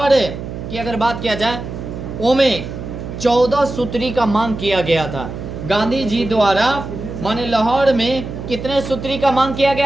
की अगर बात किया जाए, ओमें 14 सूत्री का मांग किया गया था। गांधी जी द्वारा माने लाहौर में कितने सूत्री का मांग किया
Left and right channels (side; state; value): right; noise; hum, 8 dB below the sound